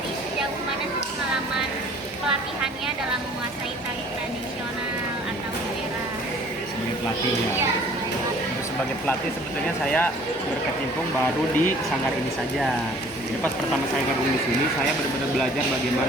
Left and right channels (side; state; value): both; normal; correlation 0.53